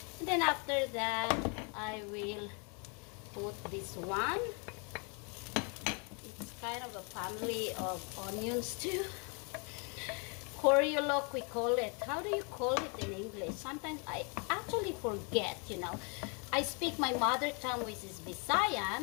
And then after that, I will put this one. It's kind of a family of onions too. Coriolok, we call it. How do you call it in English? Sometimes I actually forget, you know. I speak my mother tongue, which is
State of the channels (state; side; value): quieter; right; 35.4 dB